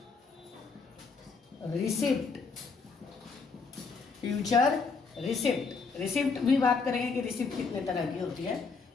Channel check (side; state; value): right; quieter; 4.7 dB